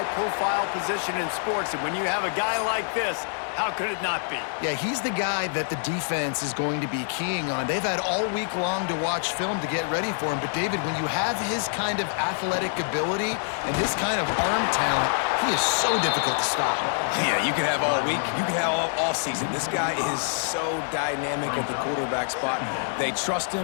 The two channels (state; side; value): silent; right; digital silence